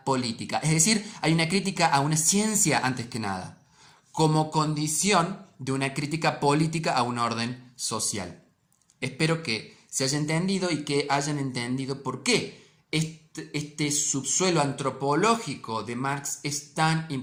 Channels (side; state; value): both; identical; correlation 1.00